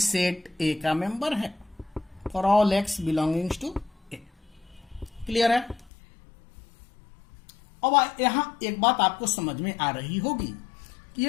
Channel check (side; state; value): right; drops out; at 5.9 s